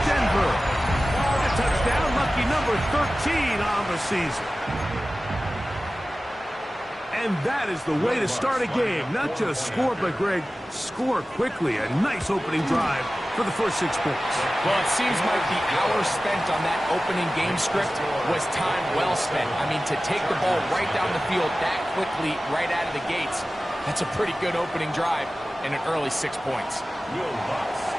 Denver. A touchdown, lucky number 13 on the season. And that is the way to start a game. Not just score, but, Greg, score quickly. A nice opening drive for the first 6 points. Well, it seems like the hour spent on that opening game script was time well spent. I mean, to take the ball right down the field that quickly, right out of the gates, that's a pretty good opening drive and an early 6 points. Will Lutz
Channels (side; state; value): both; normal; correlation 0.96